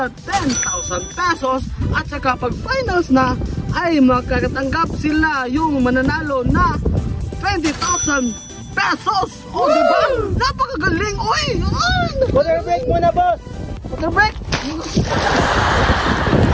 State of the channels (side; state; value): both; identical; correlation 1.00